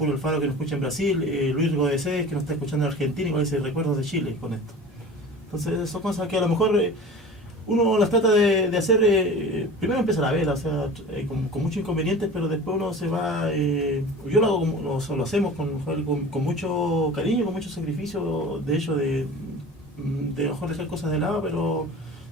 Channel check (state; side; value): normal; both; correlation 0.38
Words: Alfaro, que nos escucha en Brasil, Luis Godesés, que nos está escuchando en Argentina, y con ese recuerdos de Chile con esto. Entonces son cosas que a lo mejor uno las trata de hacer, primero empezar a ver, o sea, con muchos inconvenientes, pero después uno se va, yo lo hago lo hacemos con mucho cariño, con mucho sacrificio, de hecho, de mejor dejar cosas de lado, pero